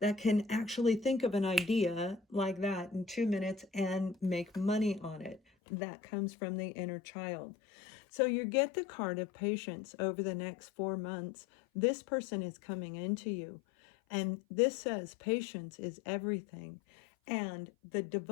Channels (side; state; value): right; drops out; at 5.4 s